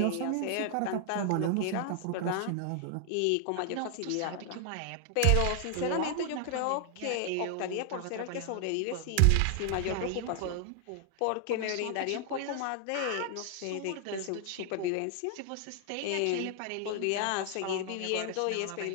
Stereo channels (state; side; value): different; both; correlation 0.00